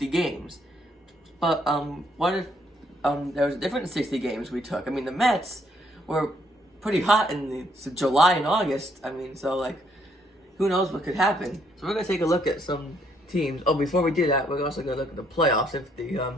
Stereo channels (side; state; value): both; normal; correlation 0.70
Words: games. But, what if there was a different 60 games we took? I mean, the Mets were pretty hot in July and August. I mean, so, who knows what could happen. So we're going to take a look at some teams. Oh, before we do that, we're also going to look at the playoffs. If